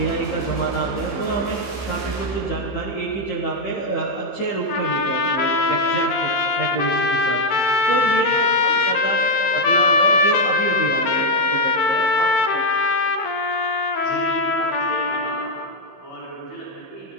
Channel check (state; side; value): late; right; 15 ms